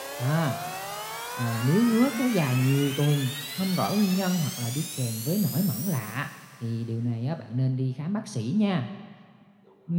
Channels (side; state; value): both; identical; correlation 1.00